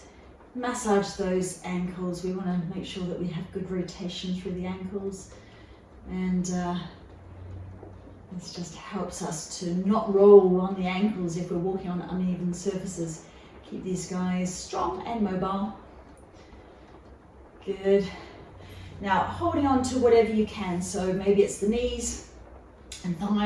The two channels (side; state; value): both; identical; correlation 1.00